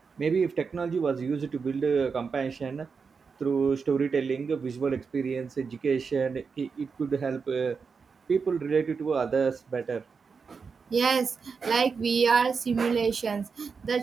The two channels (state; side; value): quieter; left; 5.4 dB